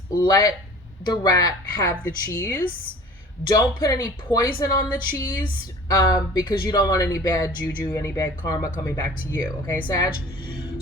let the rat have the cheese. Don't put any poison on the cheese, because you don't want any bad juju, any bad karma coming back to you. Okay, Sag?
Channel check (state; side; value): normal; both; correlation 0.44